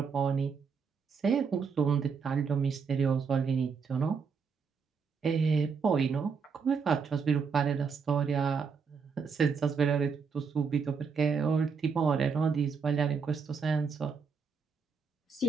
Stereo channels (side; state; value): left; quieter; 5.7 dB